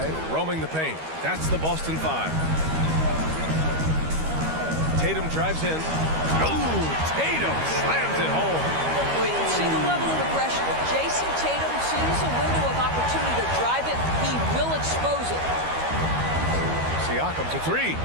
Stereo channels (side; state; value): left; late; 13 ms